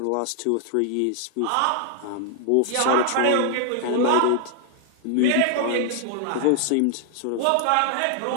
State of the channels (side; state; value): both; different; correlation 0.00